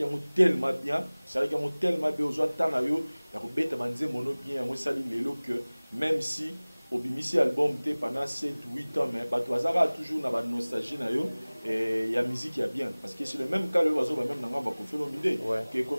mo tellement bien ça ki mo tellement bien ozo tana yo ya ko beta Banzem mono bien mo sali lelo que même si au bimisi album té pendant 7 8 ans mais bato azara toujours na ba nostalgie na yo et ya musique ya bien parce que c'est le même cas le oiseau même na ngamba ko Olomide que ko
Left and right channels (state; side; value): inverted; both; correlation -1.00